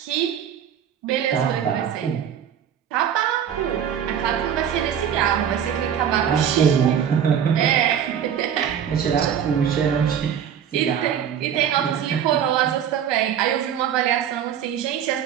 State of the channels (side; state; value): left; quieter; 8.8 dB